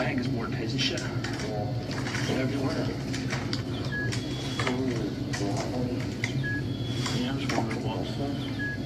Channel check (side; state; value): both; identical; correlation 1.00